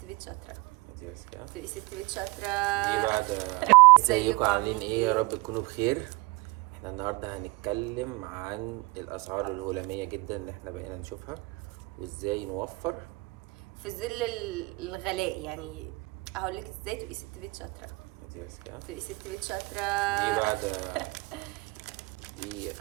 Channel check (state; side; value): quieter; left; 24.6 dB